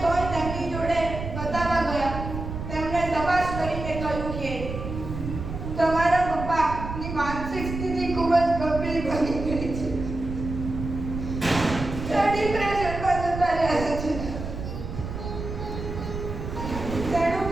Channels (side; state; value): right; noise; rumble, 7 dB below the sound